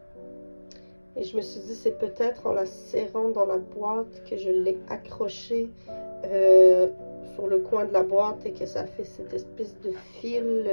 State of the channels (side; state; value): both; inverted; correlation -1.00